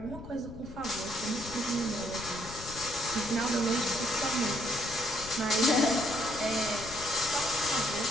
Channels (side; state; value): left; noise; rumble, 14 dB below the sound